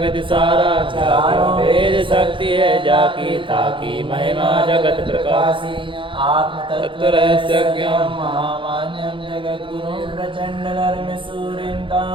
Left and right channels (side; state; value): left; late; 0.25 ms